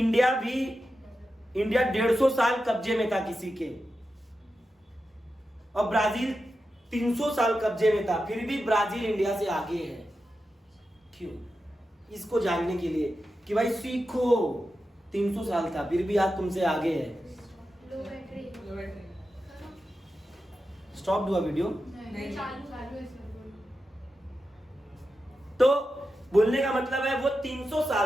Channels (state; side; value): normal; both; correlation 0.90